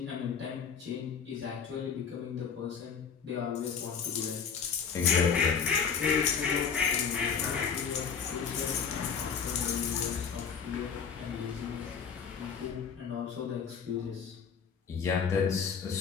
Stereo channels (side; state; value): right; quieter; 6.5 dB